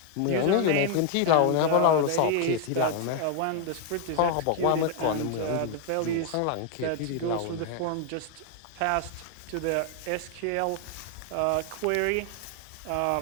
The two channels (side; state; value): both; different; correlation 0.00